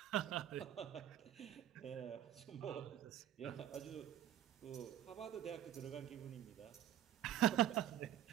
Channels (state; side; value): quieter; left; 11.4 dB